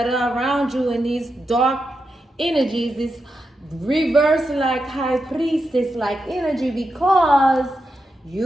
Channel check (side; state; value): both; normal; correlation 0.87